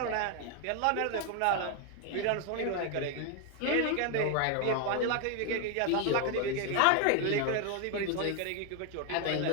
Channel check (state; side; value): different; both; correlation 0.01